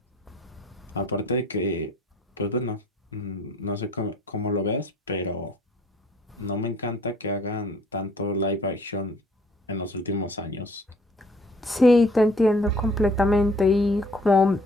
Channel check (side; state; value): both; normal; correlation 0.57